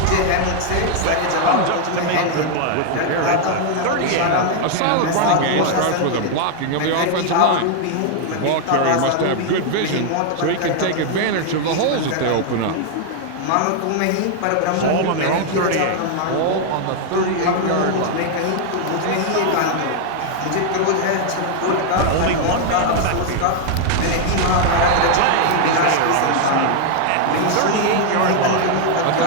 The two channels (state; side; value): different; both; correlation 0.00